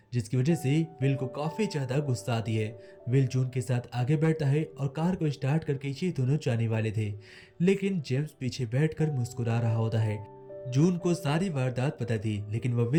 जिसकी वजह से विल को काफी ज्यादा गुस्सा आती है। विल जून के साथ आगे बैठता है और कार को स्टार्ट करके ये दोनों जाने वाले थे, लेकिन जेम्स पीछे बैठकर मुस्कुरा रहा होता है। जून को सारी वारदात पता थी, लेकिन वह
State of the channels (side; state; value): both; identical; correlation 1.00